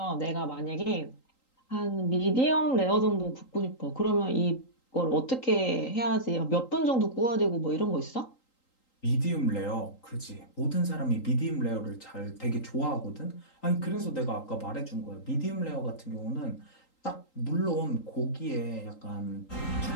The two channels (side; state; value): right; late; 3.8 ms